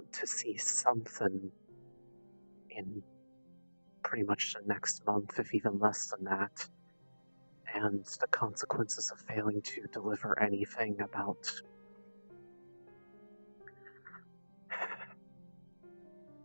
to see something in pretty much the next month, if even less than that. And the consequences of failing to deliver anything about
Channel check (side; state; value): both; inverted; correlation -1.00